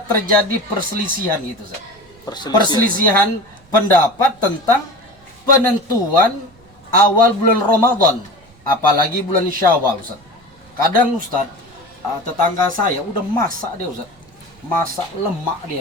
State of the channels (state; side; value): noise; right; rumble, 29 dB below the sound